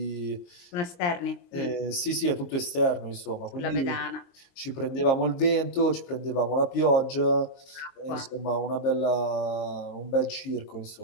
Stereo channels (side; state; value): right; late; 22 ms